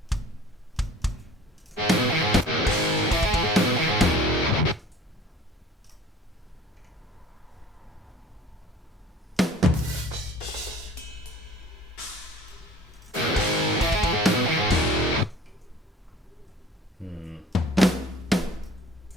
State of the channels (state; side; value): normal; both; correlation 0.48